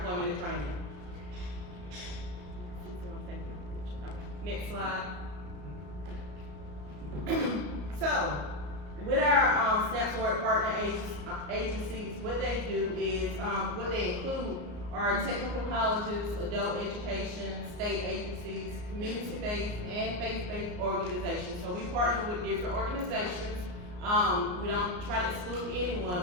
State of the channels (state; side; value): late; left; 34 ms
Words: and training. Next slide. So, with our SNAP to Work partner agencies, what they do is, what they include are technical colleges, adult education, state agencies, community-based and faith-based organizations. So we partner with different organizations. We don't try to exclude